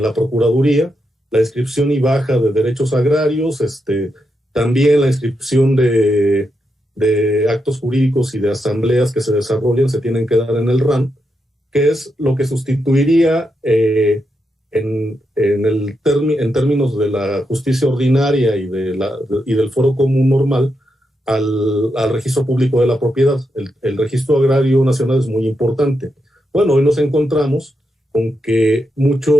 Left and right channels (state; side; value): normal; both; correlation 0.84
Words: la Procuraduría, la inscripción y baja de derechos agrarios, también la inscripción de actos jurídicos y de asambleas que se desarrollan se tienen que dar en el RAN, que es lo que sustituiría en términos de la justicia ordinaria y del foro común normal al registro público de la propiedad. El registro agrario nacional es muy importante. Bueno, hoy nos encontramos con que